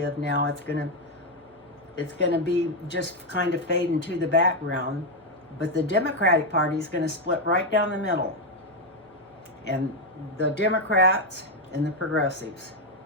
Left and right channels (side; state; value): both; normal; correlation 0.04